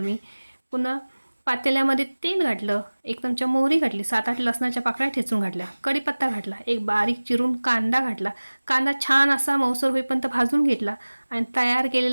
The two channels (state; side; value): inverted; both; correlation -1.00